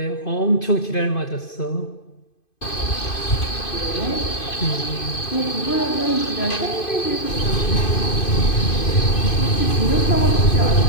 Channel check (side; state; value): right; late; 2.5 ms